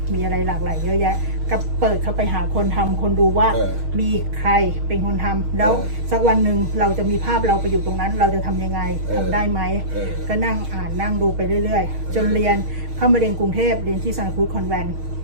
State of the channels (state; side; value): late; left; 6.4 ms